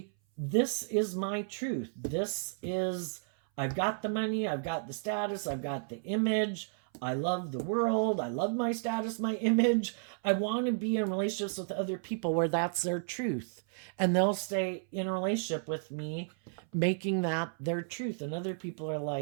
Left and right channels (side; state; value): left; silent; 56 dB below the other